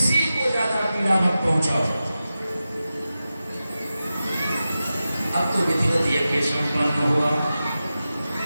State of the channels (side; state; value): both; inverted; correlation -0.93